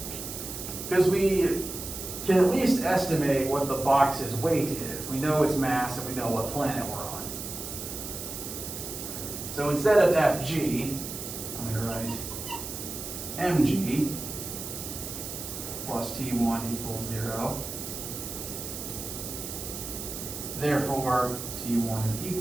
Because we can at least estimate what the box's weight is. We know its mass and we know what planet we're on. So instead of Fg, I'm going to write mg plus T1 equals 0. Therefore, T1 is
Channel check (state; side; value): noise; right; hiss, 8 dB below the sound